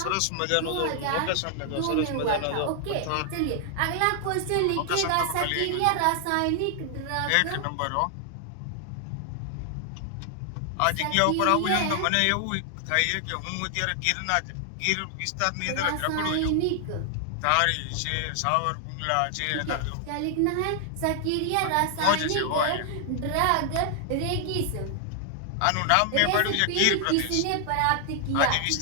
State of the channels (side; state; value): both; different; correlation 0.00